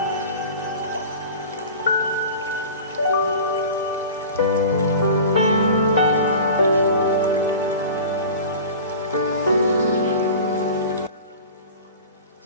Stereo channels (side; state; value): both; inverted; correlation -0.37